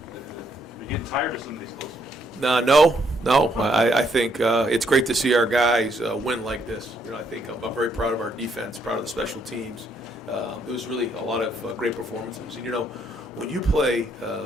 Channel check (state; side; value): normal; both; correlation 0.72